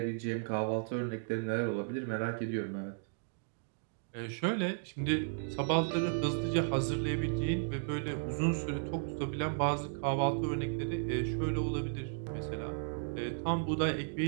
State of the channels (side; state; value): left; silent; digital silence